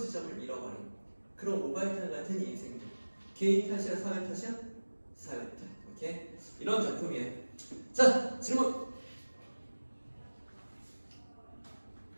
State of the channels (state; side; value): inverted; both; correlation -1.00